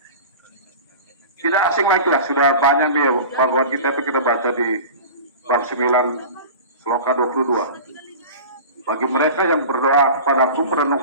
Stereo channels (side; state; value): both; inverted; correlation -0.34